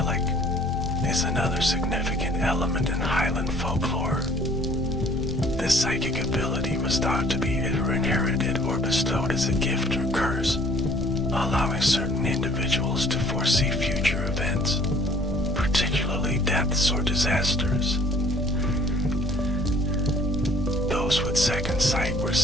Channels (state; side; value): normal; both; correlation 0.55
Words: is another significant element in Highland folklore. This psychic ability was thought to be either inherited or bestowed as a gift or curse, allowing certain individuals to foresee future events, particularly deaths or disasters. Those with second sight were